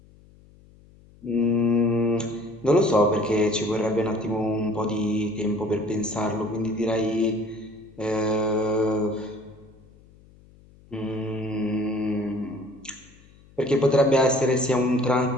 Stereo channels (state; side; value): noise; left; hum, 26 dB below the sound